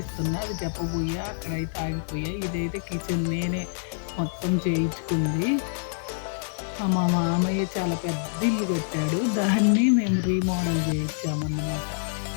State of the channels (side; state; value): right; silent; 61 dB below the other